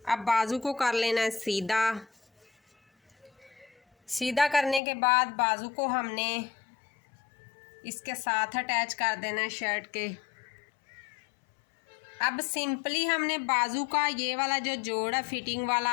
अब बाजू को कर लेना है सीधा। सीधा करने के बाद बाजू को हमने इसके साथ अटैच कर देना है शर्ट के। अब सिंपली हमने बाजू का ये वाला जो जोड़ है फिटिंग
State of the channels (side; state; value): right; drops out; at 4.8 s